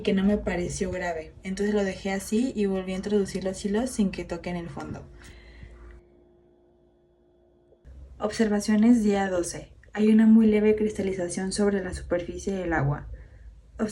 no me pareció grave, entonces lo dejé así y volví a introducir los hilos sin que toquen el fondo. Observaciones día 12. Hay una muy leve cristalización sobre la superficie del agua.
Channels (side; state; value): both; identical; correlation 1.00